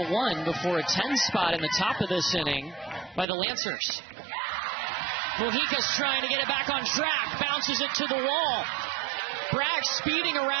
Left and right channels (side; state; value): left; drops out; at 3.2 s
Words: before a 10 spot in the top of this inning by the Lancers. Mojica's trying to get it back on track, bounces it to the wall. Bragg speeding